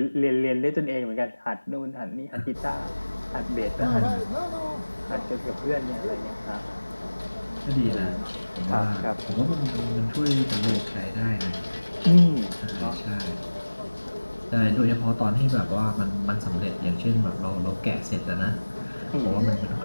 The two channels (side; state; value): both; inverted; correlation -1.00